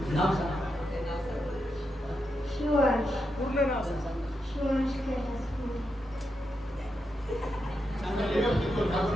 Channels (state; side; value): normal; both; correlation 0.85